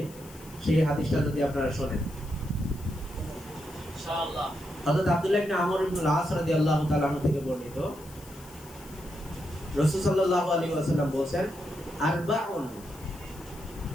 সেই হাদিসটা যদি আপনারা শুনেন। ইনশাআল্লাহ হযরত আব্দুল্লাহ ইবনে আমর ইবনে আল-আস রাদিয়াল্লাহু তাআলা আনহু থেকে বর্ণিত, রাসূল সাল্লাল্লাহু আলাইহি ওয়াসাল্লাম বলেন, আরবাউন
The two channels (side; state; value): left; noise; hiss, 21 dB below the sound